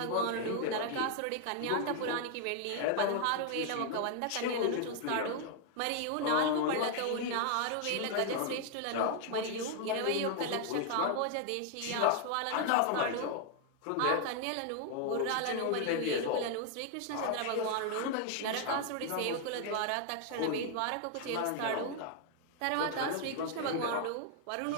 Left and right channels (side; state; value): both; different; correlation 0.00